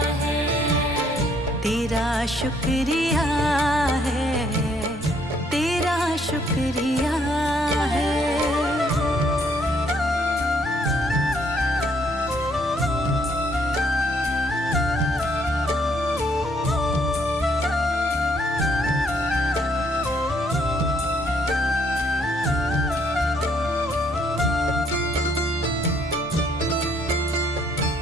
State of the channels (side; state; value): both; normal; correlation 0.68